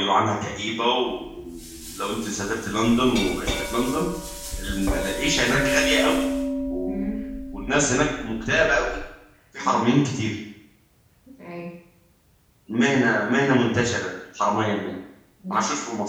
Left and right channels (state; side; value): identical; both; correlation 1.00